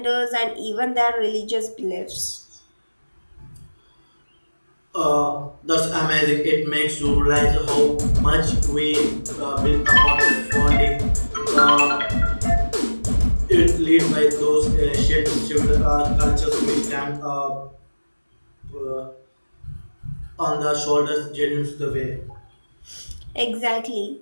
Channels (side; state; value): both; inverted; correlation -1.00